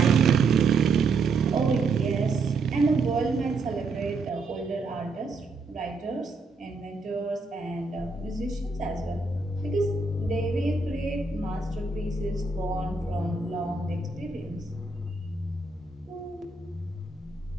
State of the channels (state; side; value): quieter; left; 3.9 dB